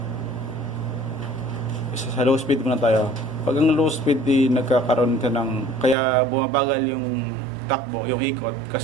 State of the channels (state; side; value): drops out; left; at 6.0 s